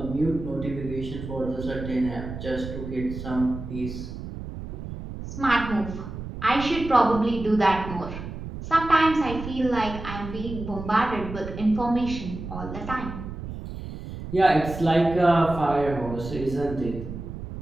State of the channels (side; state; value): right; noise; rumble, 9 dB below the sound